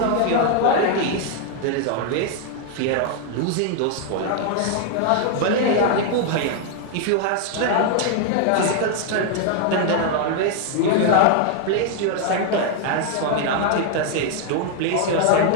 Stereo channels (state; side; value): different; both; correlation 0.00